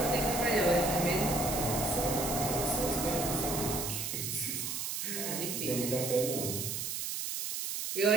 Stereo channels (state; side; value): noise; right; hiss, 3 dB below the sound